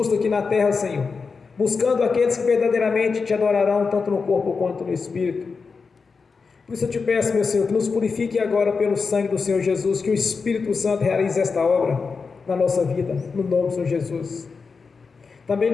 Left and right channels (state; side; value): quieter; right; 4.9 dB